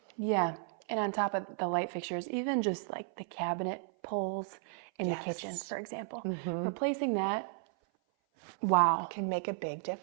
Yeah. And on top of the light fixtures, even just like the cabinet pulls in the kitchen, for example, replacing that, wow. Can make a big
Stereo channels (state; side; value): silent; left; 55 dB below the other